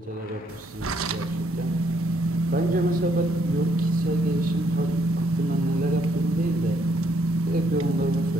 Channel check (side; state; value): both; normal; correlation 0.71